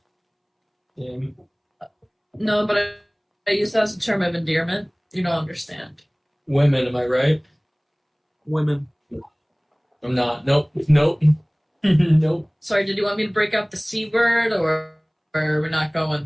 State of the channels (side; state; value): both; identical; correlation 1.00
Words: No, but I use that as a term of endearment. You don't understand. Women, am I right? Women. I'm not. Nope. Nope. Nope. Sorry, did you want me to break out the C word or we're not going